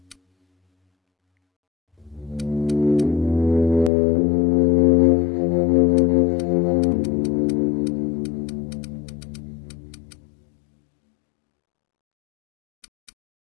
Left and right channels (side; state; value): right; drops out; at 3.9 s